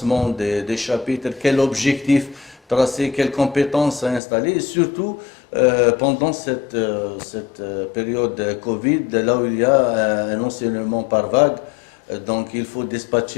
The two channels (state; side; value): drops out; right; at 4.2 s